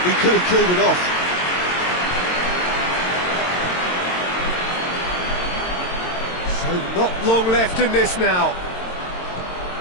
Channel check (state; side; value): late; right; 22 ms